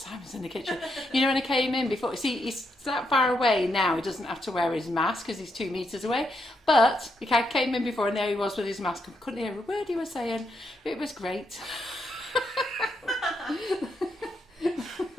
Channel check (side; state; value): both; normal; correlation 0.80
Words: in the kitchen. You know, when I came in before, see, he's that far away now, he doesn't have to wear his mask because he's 2 metres away. But I came in before and there he was with his mask and couldn't hear a word he was saying. It was great.